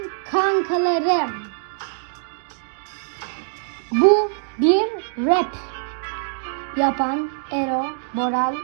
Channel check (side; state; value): left; silent; digital silence